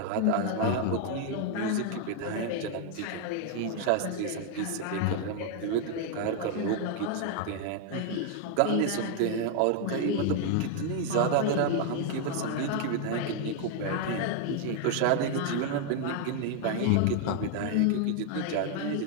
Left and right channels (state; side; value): different; both; correlation 0.00